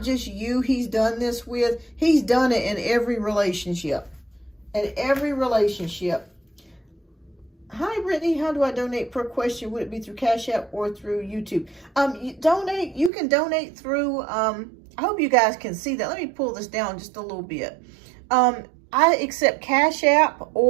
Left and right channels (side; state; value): left; drops out; at 13.1 s